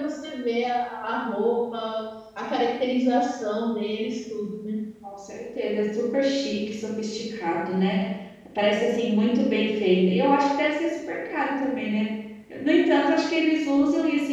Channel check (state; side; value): identical; both; correlation 1.00